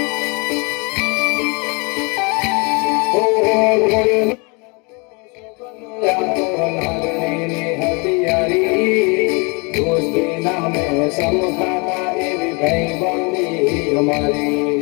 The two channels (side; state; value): right; quieter; 30.7 dB